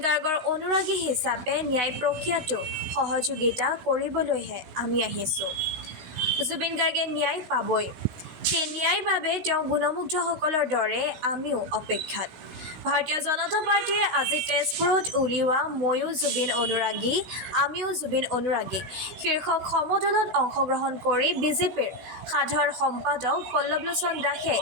গাৰ্গৰ অনুৰাগী হিচাপে ন্যায় প্ৰক্ৰিয়াটো সহযোগিতা কৰিবলৈহে আমি আহিছোঁ। জুবিন গাৰ্গে ন্যায় পাবই। সেই ন্যায়ৰ বাবে তেওঁ গুণমুগ্ধসকলৰ দৰে আমিও অপেক্ষাত। ভাৰতীয় জনতা পাৰ্টীয়ে আজি তেজপুৰত উলিওৱা ময়ো জুবিন অনুৰাগী, আমিও জুবিন অনুৰাগী শীৰ্ষক সমদলত অংশগ্ৰহণ কৰি বিজেপিৰ সাধাৰণ সম্পাদক পল্লৱলোচন দাসে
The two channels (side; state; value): left; late; 16 ms